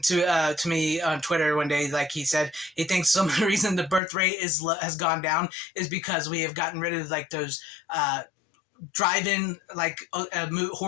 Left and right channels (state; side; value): drops out; right; at 4.0 s